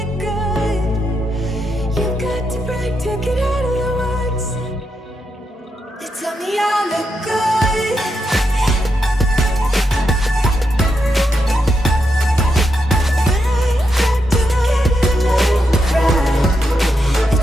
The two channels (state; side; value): normal; both; correlation 0.83